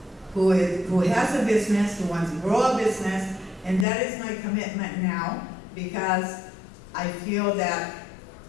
who has a business, who wants to grow a business, And that is my commitment now, because I feel that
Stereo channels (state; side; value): drops out; right; at 3.9 s